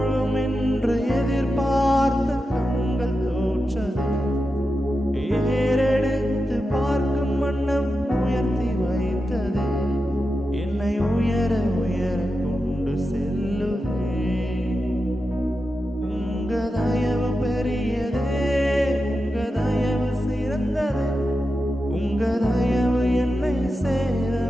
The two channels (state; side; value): normal; both; correlation 0.90